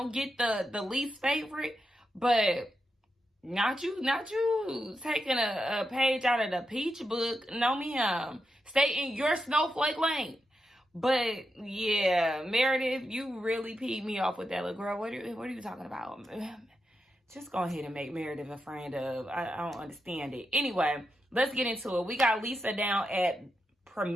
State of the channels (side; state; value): both; normal; correlation 0.87